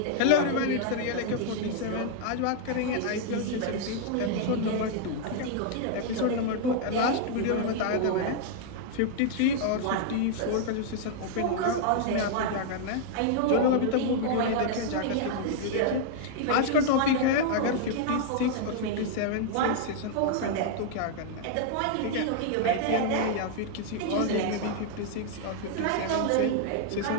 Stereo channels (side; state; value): both; different; correlation -0.01